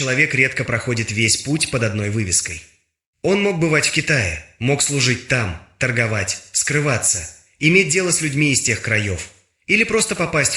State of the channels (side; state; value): both; identical; correlation 1.00